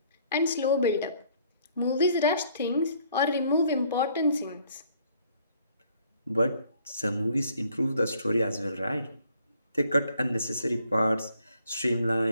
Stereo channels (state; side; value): inverted; both; correlation -0.63